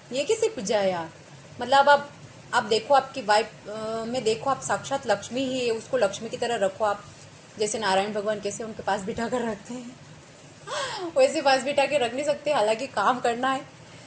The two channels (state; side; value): identical; both; correlation 1.00